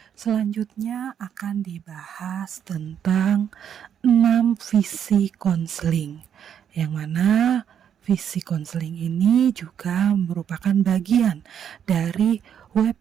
Selanjutnya akan dibahas tentang 6 visi konseling, yang mana visi konseling ini juga merupakan bagian dari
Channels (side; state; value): left; quieter; 8.7 dB